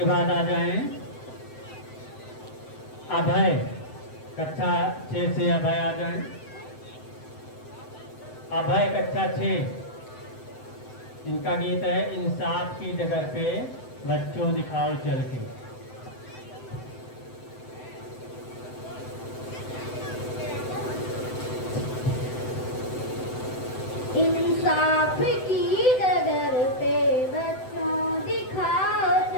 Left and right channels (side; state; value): right; late; 7.9 ms